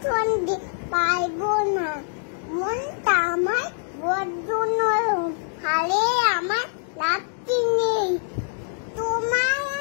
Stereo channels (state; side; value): silent; right; digital silence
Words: সঙ্গে পারবো না। মনটা আমার বড্ড নরম, হারে আমার লাগতে নেই। তোমায়